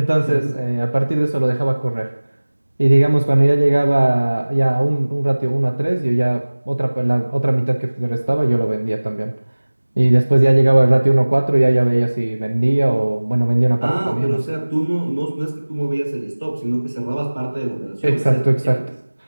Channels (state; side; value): inverted; both; correlation -1.00